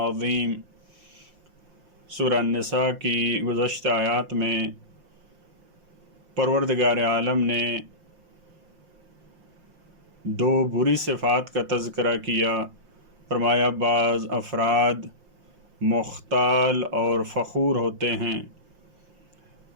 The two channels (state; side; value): late; left; 5.7 ms